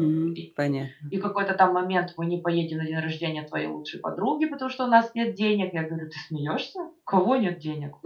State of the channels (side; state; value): both; identical; correlation 1.00